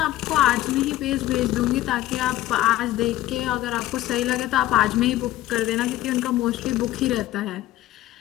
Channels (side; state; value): right; quieter; 15.0 dB